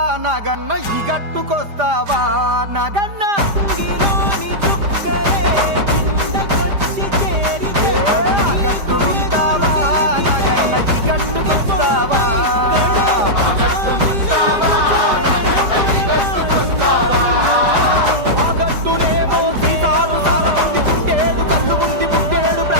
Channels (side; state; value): left; late; 5.0 ms